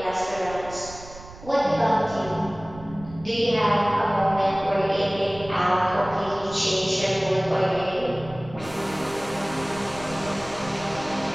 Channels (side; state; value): right; noise; rumble, 17 dB below the sound